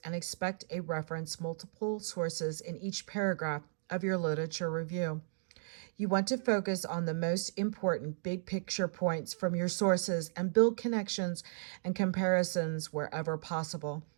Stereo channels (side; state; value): left; silent; digital silence